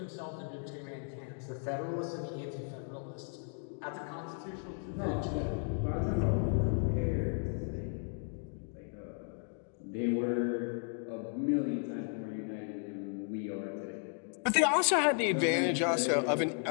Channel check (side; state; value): right; silent; 55 dB below the other